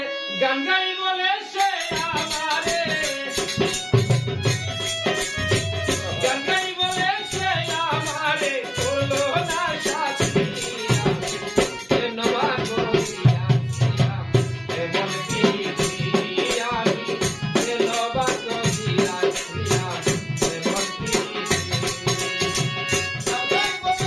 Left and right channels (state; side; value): identical; both; correlation 1.00